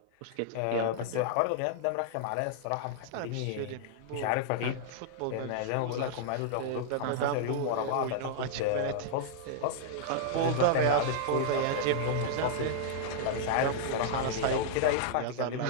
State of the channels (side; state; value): both; different; correlation -0.01